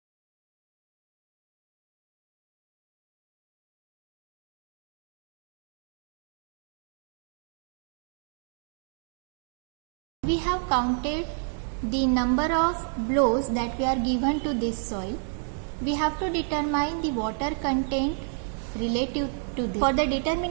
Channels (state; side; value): silent; left; 56 dB below the other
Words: We have counted the number of blows that we are given to this soil. We have to determine the water content relative to this. For the